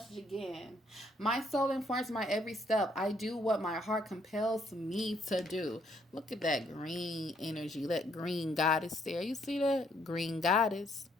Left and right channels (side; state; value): both; normal; correlation 0.69